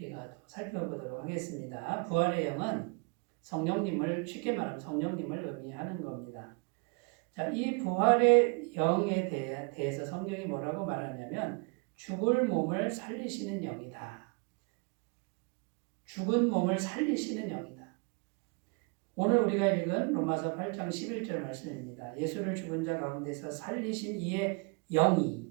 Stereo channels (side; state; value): left; quieter; 33.4 dB